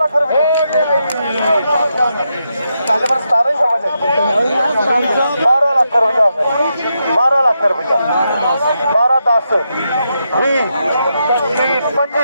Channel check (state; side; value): inverted; both; correlation -0.84